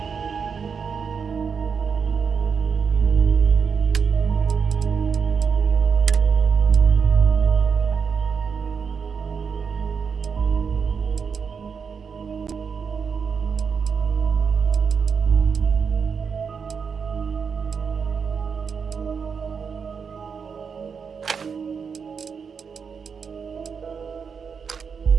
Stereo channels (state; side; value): quieter; left; 6.1 dB